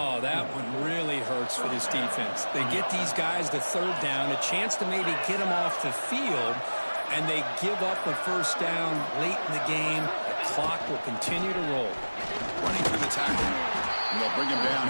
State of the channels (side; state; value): both; inverted; correlation -1.00